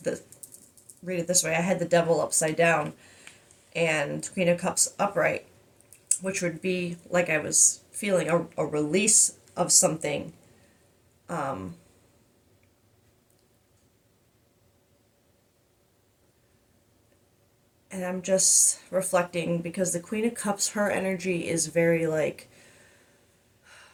the, read it this way, I had the devil upside down and Queen of Cups upright, which would be like I was feeling a release of something. Um, and I'm just reflecting because the Queen of Cups, her energy is very like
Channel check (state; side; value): identical; both; correlation 1.00